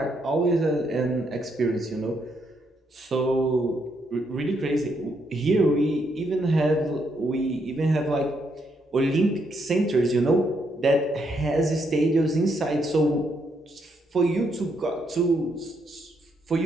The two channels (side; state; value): both; normal; correlation 0.76